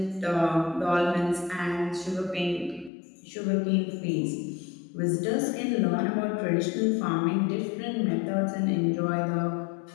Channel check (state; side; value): drops out; right; at 2.9 s